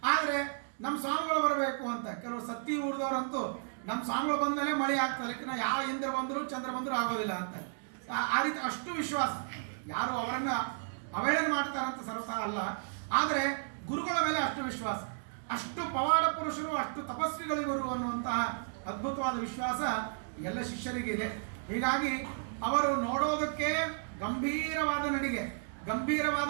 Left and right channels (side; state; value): left; silent; digital silence